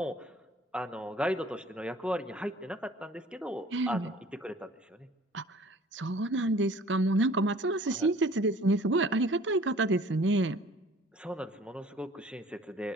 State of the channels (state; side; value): normal; both; correlation 0.50